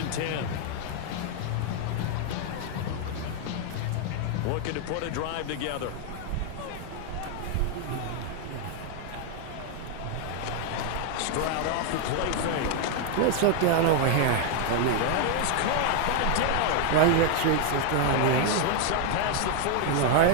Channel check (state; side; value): different; both; correlation 0.00